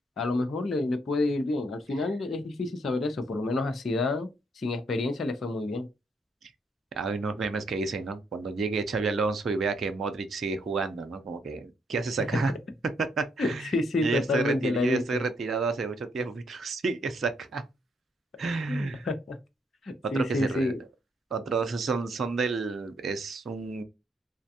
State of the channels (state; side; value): normal; both; correlation 0.73